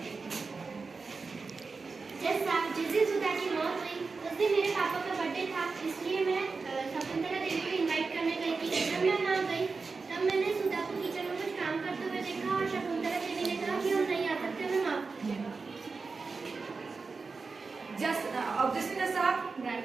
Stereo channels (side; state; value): left; quieter; 4.4 dB